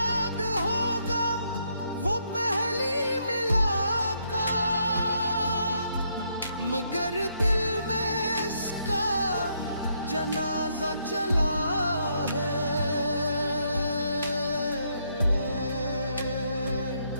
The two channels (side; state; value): both; inverted; correlation -0.74